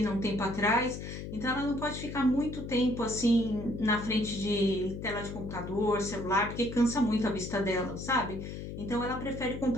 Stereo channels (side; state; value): left; noise; hum, 8 dB below the sound